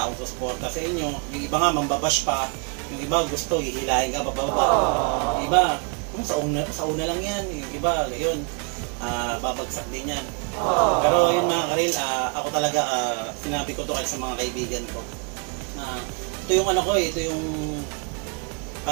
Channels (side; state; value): left; quieter; 37.4 dB